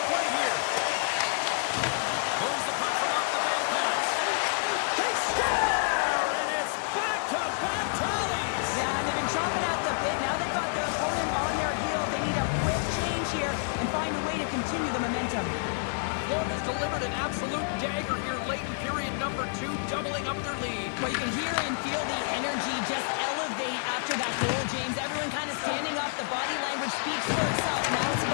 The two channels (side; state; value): right; silent; digital silence